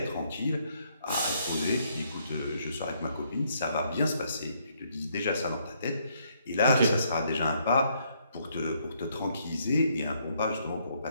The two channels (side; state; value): both; inverted; correlation -0.71